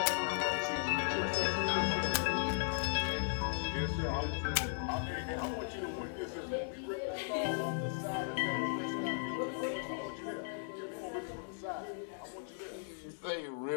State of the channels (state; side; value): silent; right; digital silence